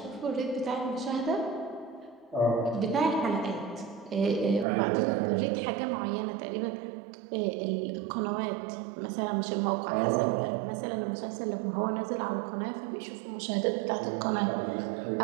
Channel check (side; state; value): left; drops out; at 4.7 s